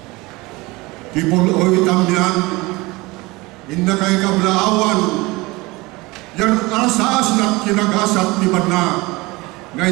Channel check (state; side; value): quieter; left; 22.7 dB